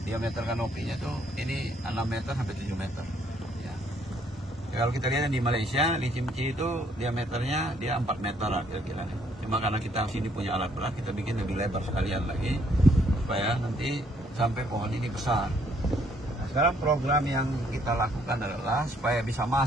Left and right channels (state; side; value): normal; both; correlation 0.67